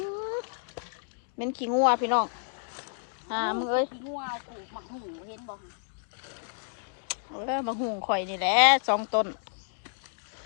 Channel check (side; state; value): right; silent; digital silence